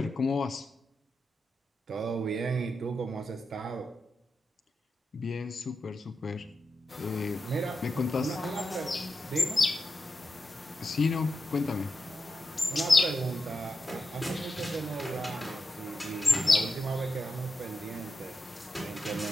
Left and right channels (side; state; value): both; normal; correlation 0.89